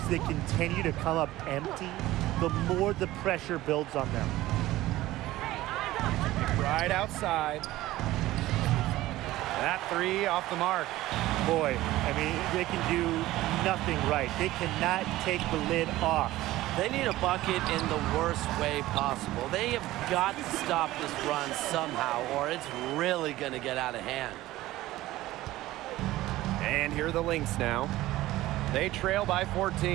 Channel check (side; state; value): left; quieter; 16.5 dB